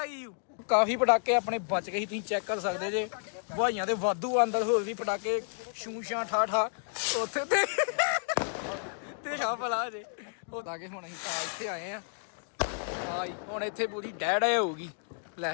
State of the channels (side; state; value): right; silent; digital silence